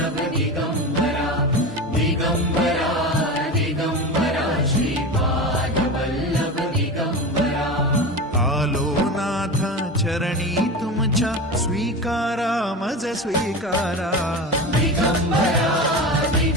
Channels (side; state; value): both; normal; correlation 0.26